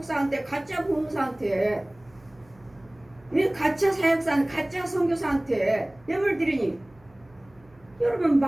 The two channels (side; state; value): right; noise; hum, 29 dB below the sound